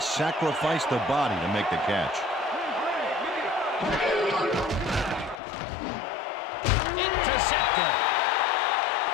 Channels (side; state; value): right; drops out; at 5.4 s